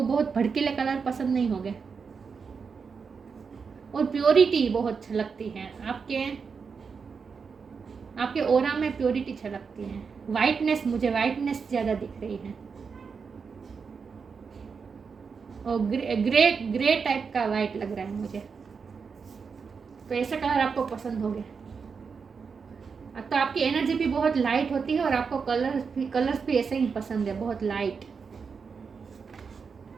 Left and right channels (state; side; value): quieter; left; 5.6 dB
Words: बहुत भड़कीले कलर पसंद नहीं होंगे। और प्योरिटी बहुत छलकती है आपके ऑरा में, प्योरिटी छलकती है। मुझे वाइटनेस ज़्यादा दिख रही है, और ग्रे टाइप का वाइट लग रहा है मुझे। तो ऐसा कलर आपको पसंद हो गया। तो आपकी एनर्जी भी बहुत लाइट होती है और आपको कलर्स भी ऐसे ही पसंद है, बहुत लाइट।